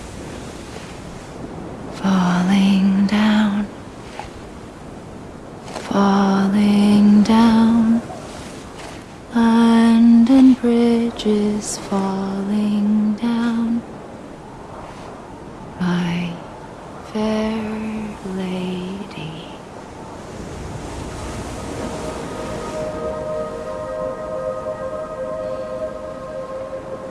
falling down, falling down. London Bridge is falling down, my fair lady.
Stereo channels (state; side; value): identical; both; correlation 1.00